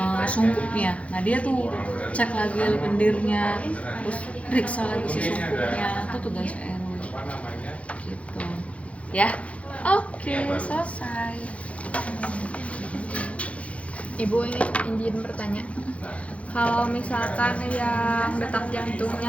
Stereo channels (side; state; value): right; late; 0.064 ms